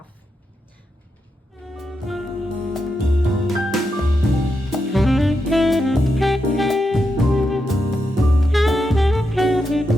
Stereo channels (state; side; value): normal; both; correlation 0.85